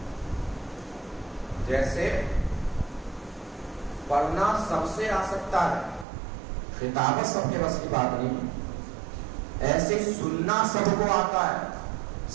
جیسے پڑھنا سب سے آ سکتا ہے، خطابت سب کے بس کی بات نہیں، ایسے سننا سب کو آتا ہے،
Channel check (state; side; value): drops out; left; at 6.1 s